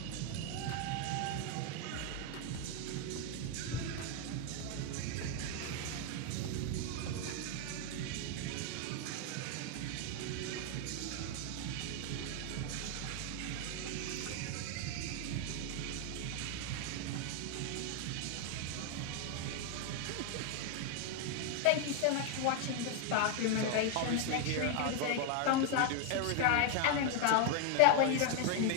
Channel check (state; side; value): different; both; correlation 0.01